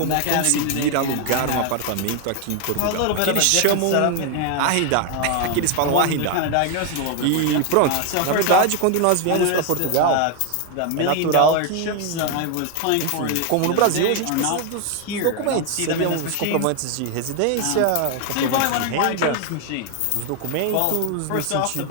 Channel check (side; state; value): both; different; correlation 0.01